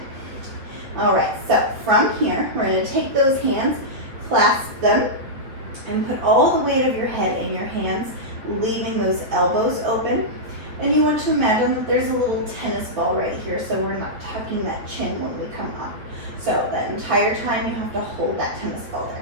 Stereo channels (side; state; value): left; late; 8.9 ms